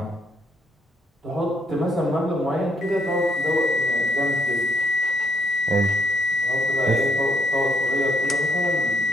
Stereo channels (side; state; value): both; normal; correlation 0.71